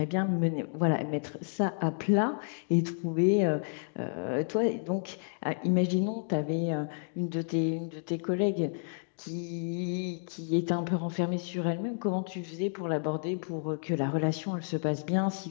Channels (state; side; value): silent; right; digital silence